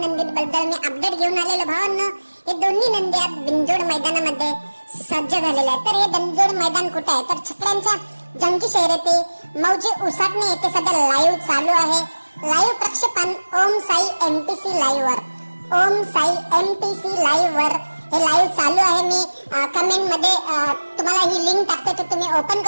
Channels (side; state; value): both; inverted; correlation -1.00